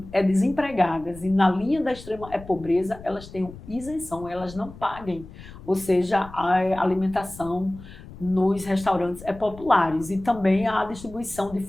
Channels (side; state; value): left; noise; rumble, 17 dB below the sound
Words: desempregadas e na linha da extrema pobreza, elas tenham isenção, elas não paguem, ou seja, a alimentação nos restaurantes populares, e também a distribuição de